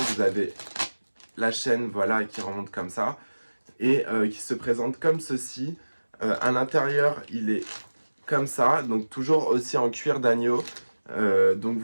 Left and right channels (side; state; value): both; inverted; correlation -1.00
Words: avez la chaîne, voilà, qui remonte comme ça et qui se présente comme ceci. À l'intérieur, il est comme ça, donc toujours aussi en cuir d'agneau. Donc